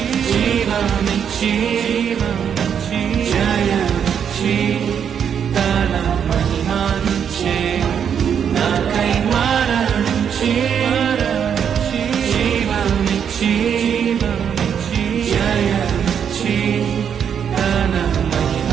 జయమిచ్చి తన మహిమనిచ్చే నాకై మరణించి జీవమిచ్చి జయమిచ్చి తన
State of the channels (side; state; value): left; quieter; 8.0 dB